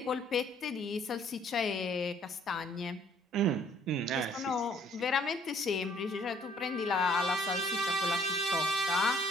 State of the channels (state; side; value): normal; both; correlation 0.61